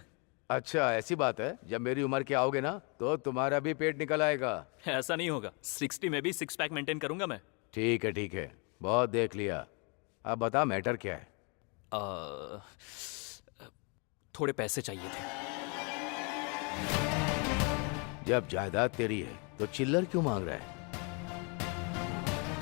अच्छा, ऐसी बात है। जब मेरी उम्र के आओगे ना तो तुम्हारा भी पेट निकल आएगा। ऐसा नहीं होगा। 60 में भी 6 पैक मेंटेन करूंगा मैं। ठीक है ठीक है, बहुत देख लिया। अब बता मैटर क्या है? थोड़े पैसे चाहिए थे। जब जायदाद तेरी है तो चिल्लर क्यों मांग रहा है?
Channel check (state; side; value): quieter; right; 34.3 dB